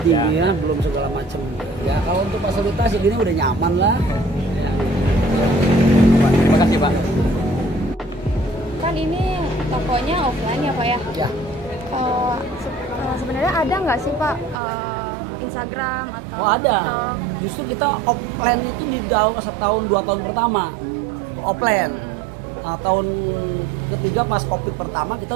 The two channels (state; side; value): drops out; left; at 14.6 s